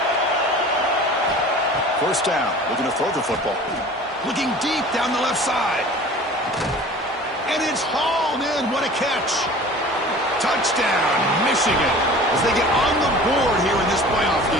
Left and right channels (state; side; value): normal; both; correlation 0.42